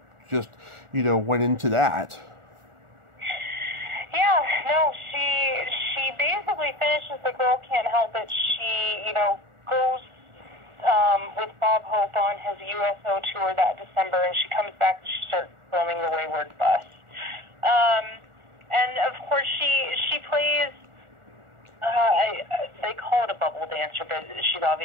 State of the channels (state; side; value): late; left; 1.4 ms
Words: just, went into that. Yeah, no, she basically finishes The Girl Can't Help It. She, goes with Bob Hope on his USO tour that December, and she comes back and she starts filming The Wayward Bus. And of course she plays, they call it a bubble dancer, but she's